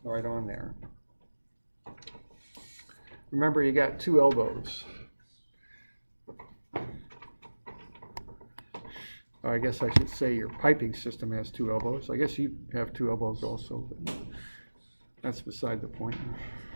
right on there. Remember, you got two elbows. Or I guess I should say your piping system has two elbows. I guess you have two elbows also, but that's beside the point.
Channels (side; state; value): both; inverted; correlation -1.00